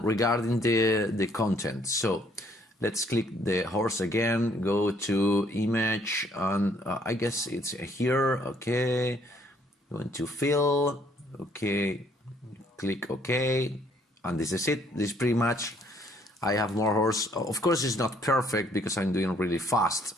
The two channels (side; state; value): both; normal; correlation 0.65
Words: regarding the content. So let's click the horse again, go to image, and I guess it's here. Okay, going to fill. Okay, click OK, and this is it. This is pretty much, I have more horse. Of course, it's not perfect because I'm doing really fast,